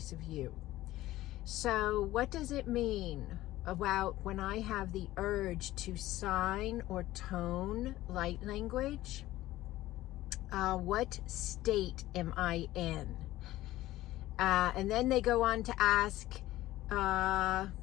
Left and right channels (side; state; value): right; quieter; 16.0 dB